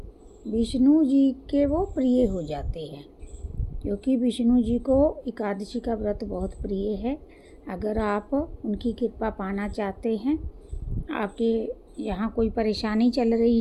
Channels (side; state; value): both; identical; correlation 1.00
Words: विष्णु जी के वो प्रिय हो जाते हैं, क्योंकि विष्णु जी को एकादशी का व्रत बहुत प्रिय है। अगर आप उनकी कृपा पाना चाहते हैं, आपके यहाँ कोई परेशानी चल रही